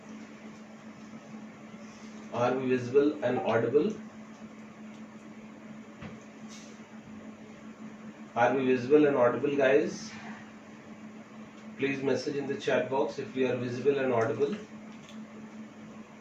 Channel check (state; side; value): identical; both; correlation 1.00